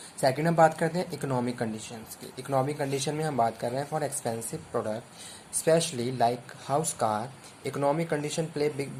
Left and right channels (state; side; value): identical; both; correlation 1.00